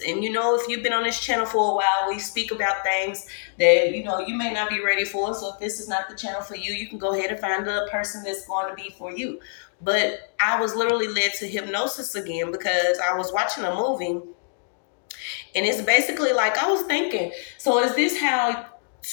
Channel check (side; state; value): right; silent; digital silence